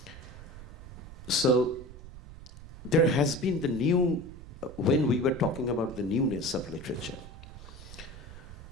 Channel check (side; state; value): right; noise; rumble, 15 dB below the sound